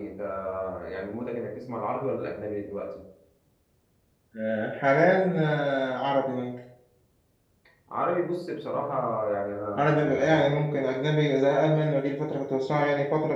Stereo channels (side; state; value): both; identical; correlation 1.00